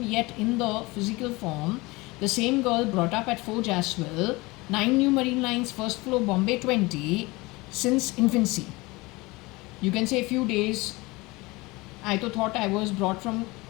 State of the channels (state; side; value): quieter; right; 22.8 dB